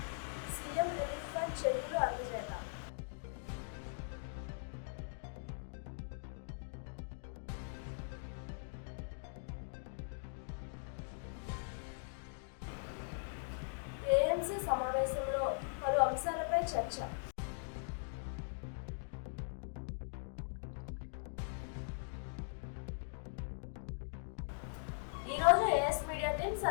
సీఎం రిలీఫ్ ఫండ్ చెక్కులు అందజేత, ఏఎంసీ సమావేశంలో పలు అంశాలపై చర్చ. ఈ రోజు ఏఎస్ మీడియా టీం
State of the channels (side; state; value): right; silent; digital silence